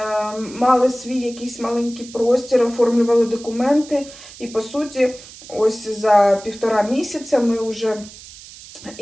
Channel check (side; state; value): right; noise; hiss, 18 dB below the sound